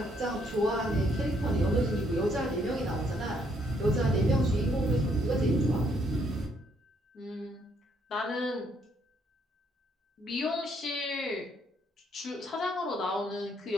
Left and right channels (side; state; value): both; normal; correlation 0.70